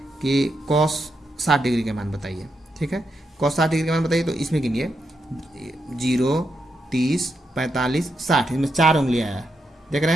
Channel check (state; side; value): normal; both; correlation 0.83